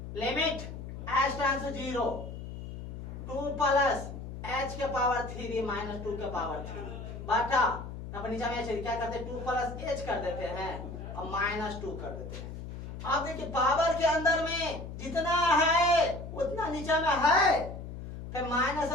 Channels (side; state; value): left; noise; hum, 9 dB below the sound